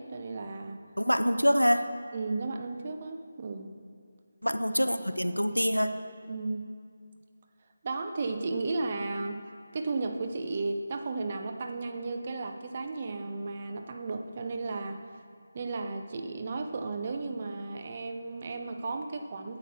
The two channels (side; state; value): both; inverted; correlation -0.95